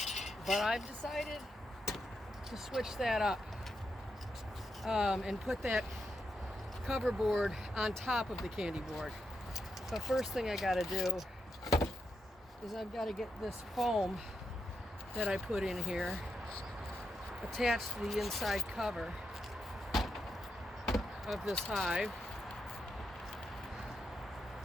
But I've decided to switch that up and put that cover board on top of the candy board. But first thing I gotta do is I've got to get this foam that I put in here attached to the inside cover of this hive.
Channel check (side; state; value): both; normal; correlation 0.83